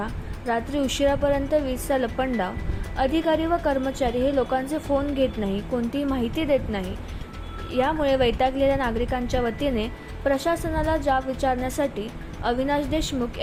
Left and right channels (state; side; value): identical; both; correlation 1.00